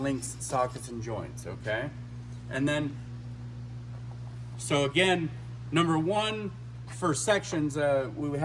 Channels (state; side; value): identical; both; correlation 1.00